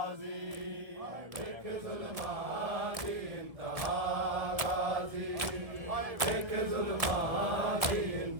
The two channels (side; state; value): left; late; 1.3 ms